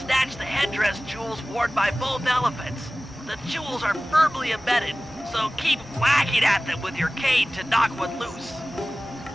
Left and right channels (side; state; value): both; normal; correlation 0.97